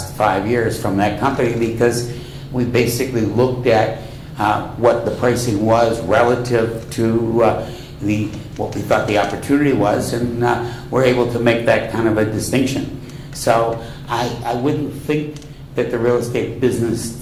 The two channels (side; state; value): both; identical; correlation 1.00